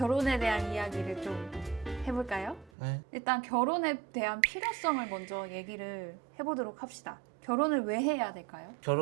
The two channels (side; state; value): left; drops out; at 2.7 s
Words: 대한 이야기를 좀 해볼까요? 네. 일단 결혼에 대한 필요성을 먼저 얘기를 해보도록 합시다. 결혼을 왜 해야 될까요?